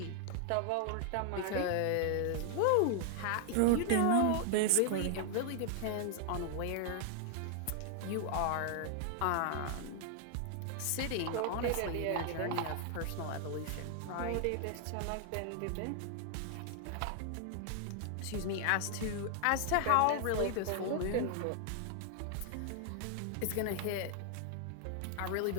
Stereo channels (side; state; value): both; different; correlation 0.00